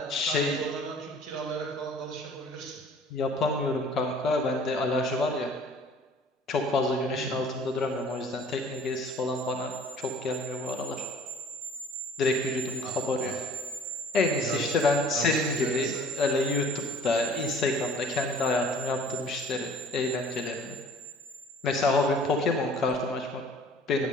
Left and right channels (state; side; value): normal; both; correlation 0.51